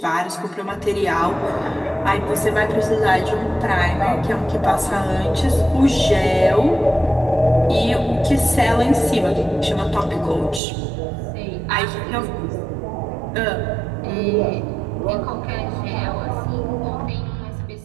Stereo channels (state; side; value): drops out; left; at 10.6 s